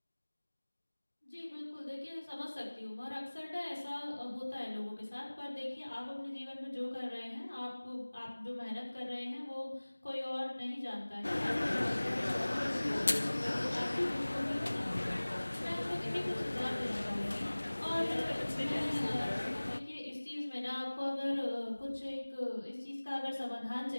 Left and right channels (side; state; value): both; inverted; correlation -1.00